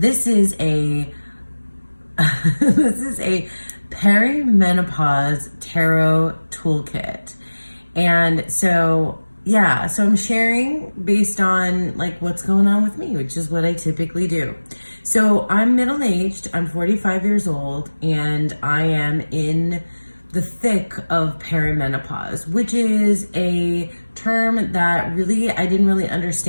this is a perimenopause tarot toolkit. And so I'm sharing based on like what's going on with me, which is what I typically do. So I'm middle-aged, I'm 45 years old, and I am in the thick of perimenopause, which is a term that really I didn't really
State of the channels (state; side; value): inverted; both; correlation -1.00